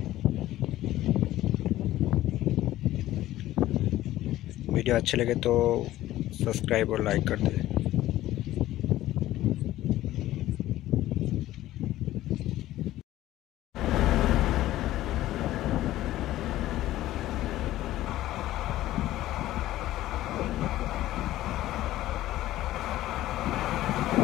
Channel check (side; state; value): right; quieter; 14.9 dB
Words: Video अच्छे लगे तो सब्सक्राइब और लाइक कर दें।